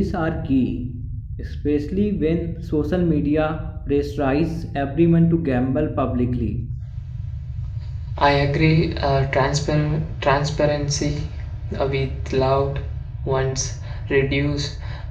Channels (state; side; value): identical; both; correlation 1.00